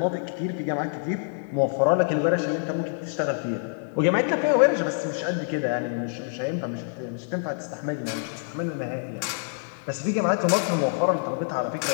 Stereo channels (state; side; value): silent; right; 61 dB below the other